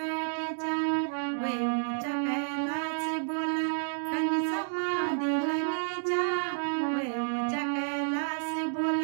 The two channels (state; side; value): silent; left; digital silence